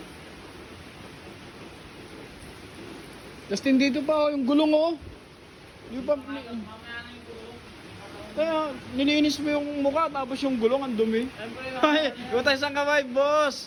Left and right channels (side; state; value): both; identical; correlation 1.00